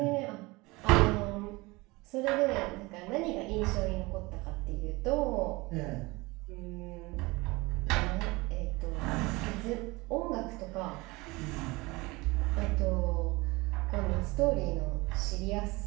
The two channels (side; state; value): left; quieter; 23.2 dB